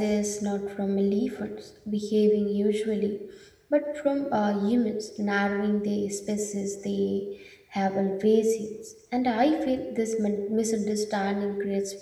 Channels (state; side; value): identical; both; correlation 1.00